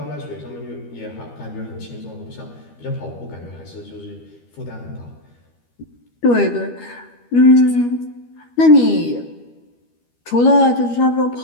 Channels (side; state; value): right; late; 13 ms